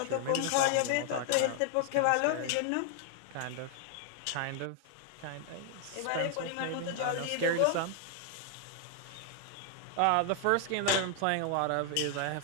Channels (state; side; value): different; both; correlation 0.00